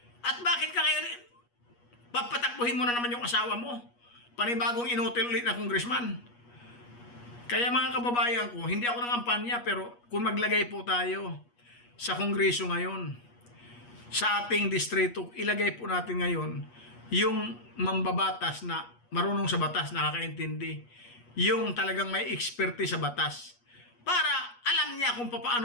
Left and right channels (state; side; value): late; right; 8.3 ms